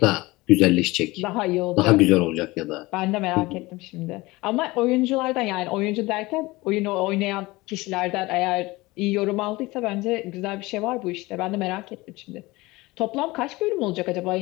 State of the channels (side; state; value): right; quieter; 21.2 dB